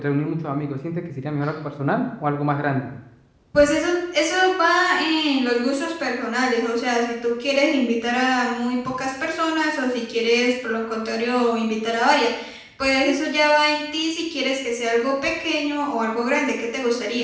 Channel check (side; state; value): both; identical; correlation 1.00